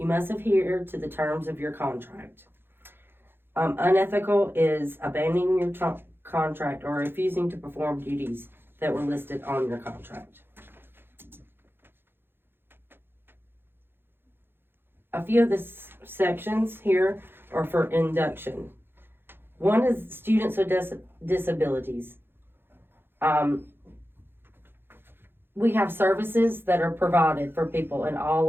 must adhere to the terms of your contract. Unethical is abandoning your contract or refusing to perform duties that were listed on your contract. A few of the sections here are for induction. One is students with disabilities. we have services that are provided for people in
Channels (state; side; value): late; left; 0.10 ms